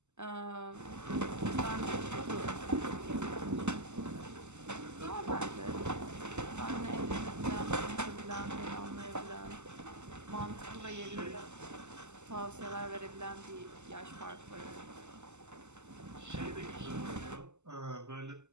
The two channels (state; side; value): late; left; 0.83 ms